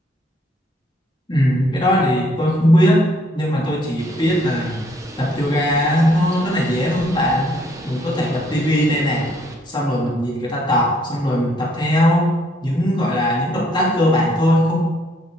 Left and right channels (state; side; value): normal; both; correlation 0.67